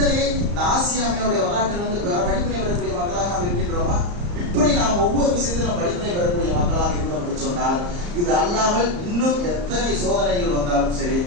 இந்த ஆசியாமையோடைய வரலாற்றில் வந்து படிப்பினை வரக்கூடிய மக்களாக நாம் இருக்கின்றோமா? இப்படி நாம் ஒவ்வொரு விஷயத்திலும் படிப்பினை பெறக்கூடிய மக்களாக இருந்தோம் என்று சொன்னால், இது அல்லாமல் இன்னும் எத்தனை சோதனைகள் வந்தாலும் சரி,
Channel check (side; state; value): left; late; 34 ms